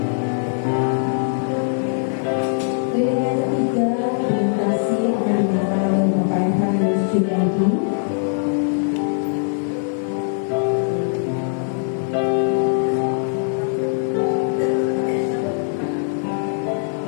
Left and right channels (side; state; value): right; silent; 56 dB below the other